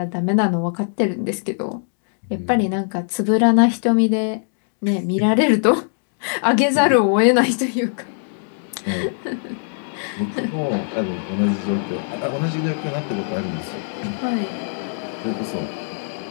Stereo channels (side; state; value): right; silent; digital silence